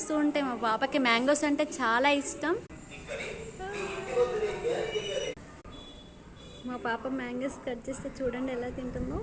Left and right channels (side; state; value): both; identical; correlation 1.00